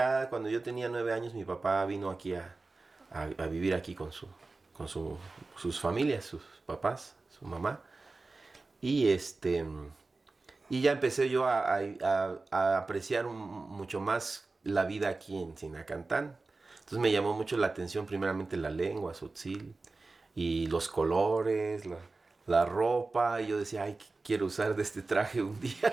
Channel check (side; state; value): left; quieter; 3.6 dB